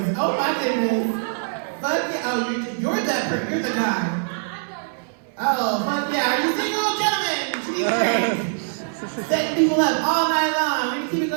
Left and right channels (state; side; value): silent; left; digital silence